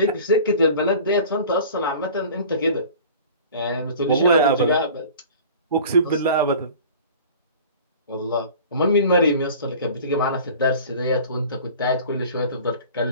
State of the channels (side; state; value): both; inverted; correlation -0.42